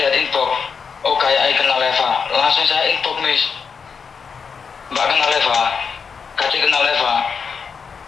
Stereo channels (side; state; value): right; quieter; 5.9 dB